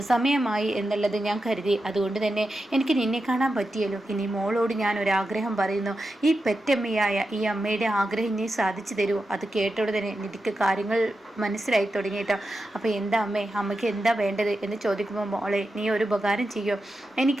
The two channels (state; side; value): normal; both; correlation 0.89